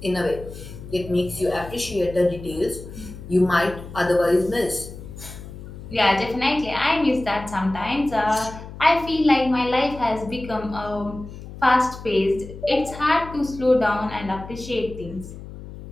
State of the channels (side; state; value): left; noise; hum, 13 dB below the sound